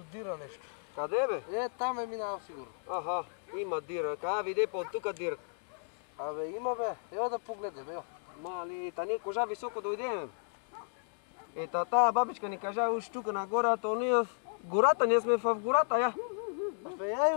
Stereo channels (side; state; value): right; silent; digital silence